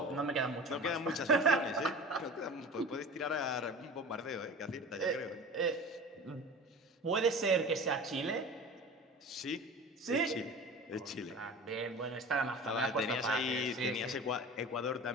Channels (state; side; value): normal; both; correlation 0.37